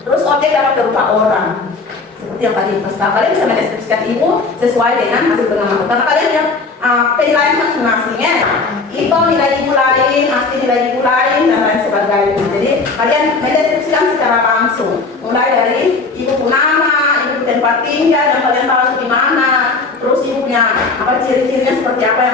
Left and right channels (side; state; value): right; quieter; 4.0 dB